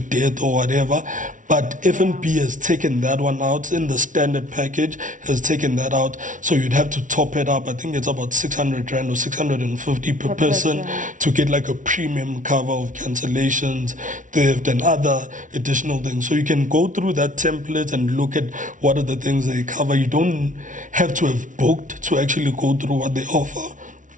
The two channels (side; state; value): left; late; 0.37 ms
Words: or whatever. But F&B has taken that one out in the standard package, has taken that out. So you'd have to top it up. I think it's about 600 rand or 650 per person to get like a premium cover of cancellations, theft and other additional things. So you can go through that template and look at what are the things they cover. You don't have to have booked to actually go through what they offer.